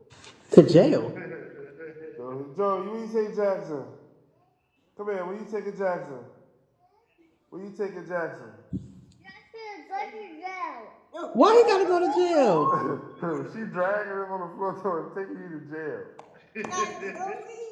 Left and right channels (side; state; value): both; identical; correlation 1.00